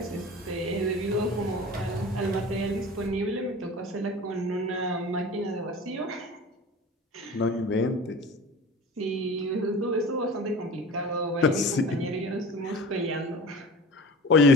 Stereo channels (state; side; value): normal; both; correlation 0.37